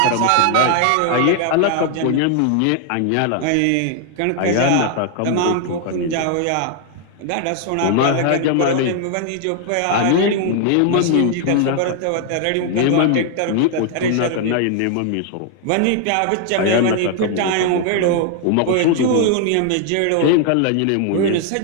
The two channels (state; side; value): different; both; correlation 0.00